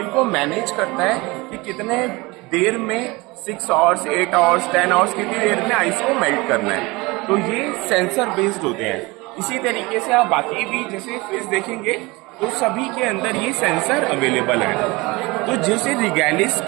को मैनेज करता है कि कितने देर में 6 आवर्स, 8 आवर्स, 10 आवर्स, कितनी देर में आइस को मेल्ट करना है। तो ये सेंसर बेस्ड होते हैं। इसी तरीके से आप बाकी भी जैसे फ्रिज देखेंगे तो सभी के अंदर ये सेंसर अवेलेबल है। तो जैसे रिगैलिस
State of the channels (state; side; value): quieter; left; 23.6 dB